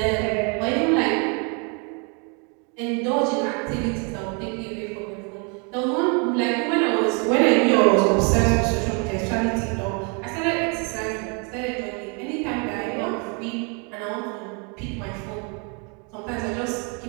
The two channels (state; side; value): quieter; left; 35.2 dB